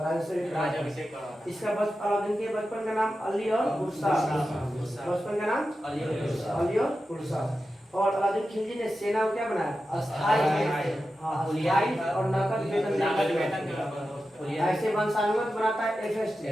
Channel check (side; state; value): both; normal; correlation 0.92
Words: इसका अलाउद्दीन के बचपन का नाम अली और गुरसा, बचपन का नाम अली और गुरसा। और अलाउद्दीन खिलजी ने सेना को क्या बनाया? अस्थायी और नकद वेतन। ऐसे वंशानुगत बनाता है एफएसटी,